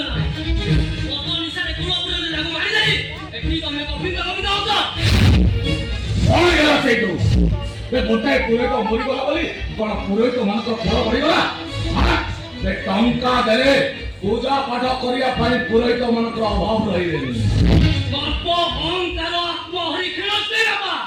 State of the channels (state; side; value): identical; both; correlation 1.00